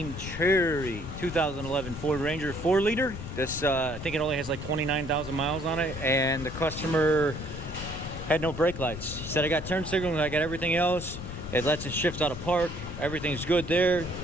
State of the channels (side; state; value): left; noise; rumble, 9 dB below the sound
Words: cherry, 2011 Ford Ranger 4-liter. This, I think it only has like 29,000 miles on it, and the customer had no brake lights. He said, I got turn signals, I got everything else. It lets it shift out of park. Everything's good there.